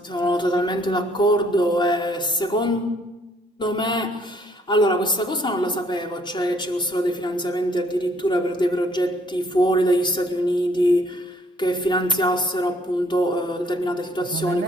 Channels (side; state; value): both; normal; correlation 0.64